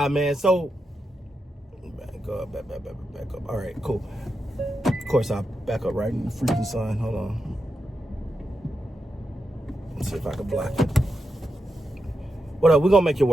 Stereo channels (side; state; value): both; normal; correlation 0.87